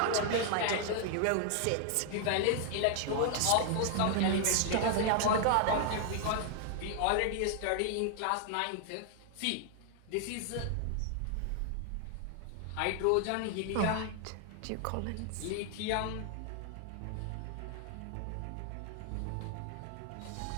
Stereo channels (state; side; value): different; both; correlation 0.00